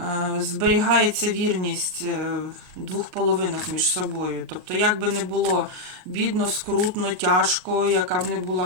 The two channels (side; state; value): left; late; 38 ms